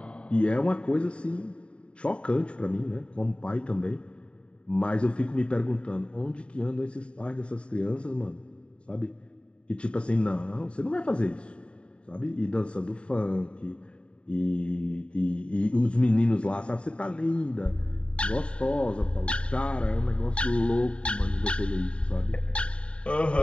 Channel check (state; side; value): late; right; 0.058 ms